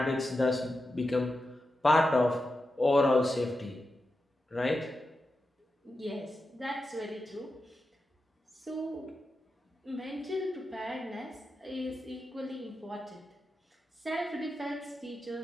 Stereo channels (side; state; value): both; normal; correlation 0.90